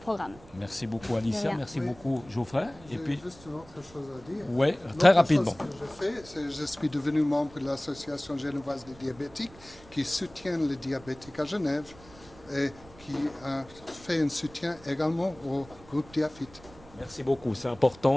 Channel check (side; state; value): right; noise; rumble, 22 dB below the sound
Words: Merci beaucoup Alicia, merci beaucoup Geoffrey. Et puis juste une autre chose à dire. Oui, très rapidement. Ce que je suis devenu membre de l'association genevoise des diabétiques qui soutient les diabétiques à Genève et qui fait un soutien également au groupe Diafit. Merci beaucoup, c'est